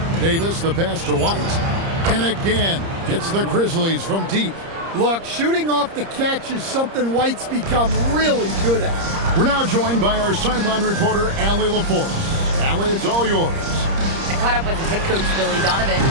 Davis, the pass to White. And again, it's the Grizzlies from deep. Look, shooting off the catch is something White's become really good at. We're now joined by our sideline reporter, Allie LaForce. Allie, it's all yours. I caught up with head coach Billy Donovan.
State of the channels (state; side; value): late; left; 30 ms